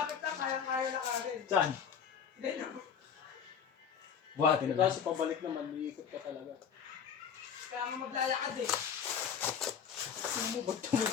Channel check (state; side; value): quieter; right; 7.4 dB